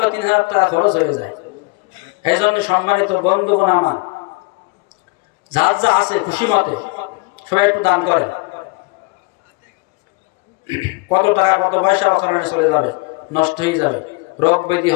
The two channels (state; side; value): quieter; right; 27.2 dB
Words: 3,000 টাকা খরচ হয়ে যায়। এই জন্য সম্মানিত বন্ধুগণ আমার, যার যা আছে খুশি মতে সবাই একটু দান করেন। কত টাকা কত পয়সা ওখানে চলে যাবে, নষ্ট হয়ে যাবে, রোগ ব্যাধি